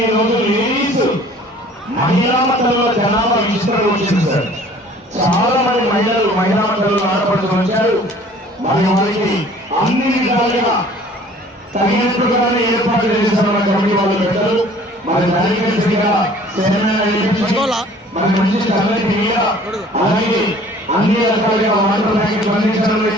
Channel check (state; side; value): normal; both; correlation 0.51